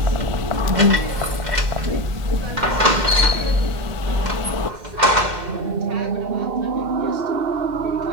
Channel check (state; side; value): late; left; 2.1 ms